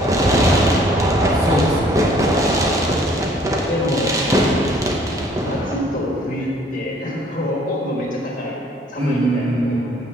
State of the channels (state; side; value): normal; both; correlation 0.58